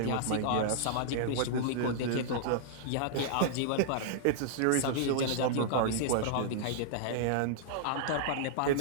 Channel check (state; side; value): different; both; correlation -0.02